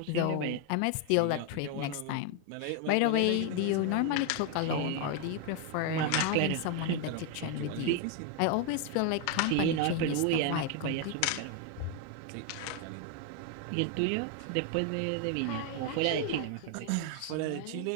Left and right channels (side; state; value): both; different; correlation 0.01